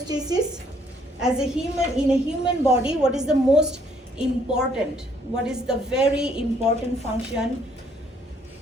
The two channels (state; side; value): normal; both; correlation 0.66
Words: As a human, in a human body, what is the most important? What is the very important function